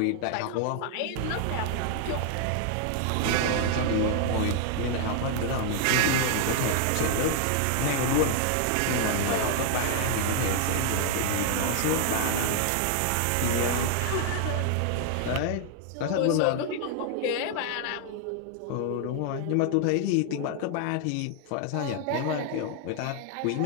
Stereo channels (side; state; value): both; different; correlation 0.00